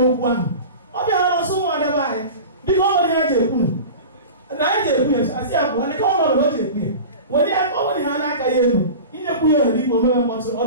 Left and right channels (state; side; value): inverted; both; correlation -0.33